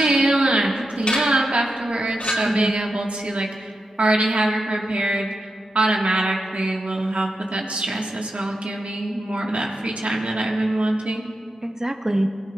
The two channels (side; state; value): both; normal; correlation 0.88